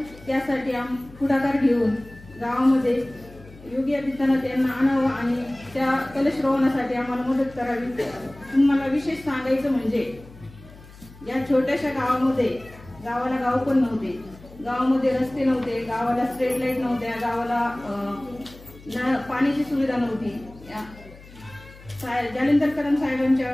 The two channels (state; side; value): noise; left; hum, 20 dB below the sound